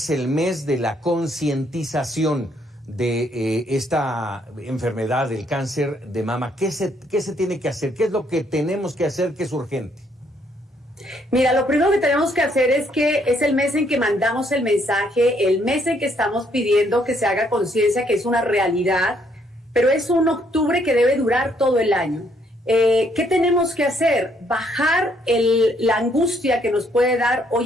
el mes de la concientización de esta enfermedad, del cáncer de mama. ¿Qué se tiene que hacer? ¿Qué es lo que tenemos que hacer que es urgente? Mira, lo primero que tenemos que hacer es que es el mes en que mandamos el mensaje, el mes en que estamos pidiendo que se haga conciencia que es una realidad, pero es un octubre que debe durar todo el año. ¿Qué tenemos que hacer? Bajar la angustia que nos puede dar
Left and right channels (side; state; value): both; normal; correlation 0.69